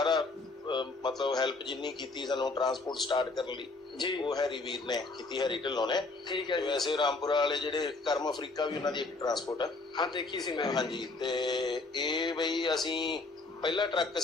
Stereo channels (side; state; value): right; quieter; 3.5 dB